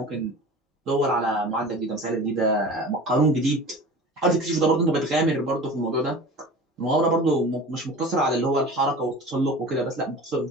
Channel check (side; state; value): both; normal; correlation 0.37